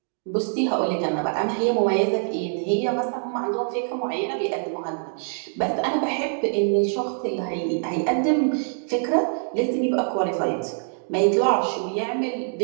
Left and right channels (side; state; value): left; silent; digital silence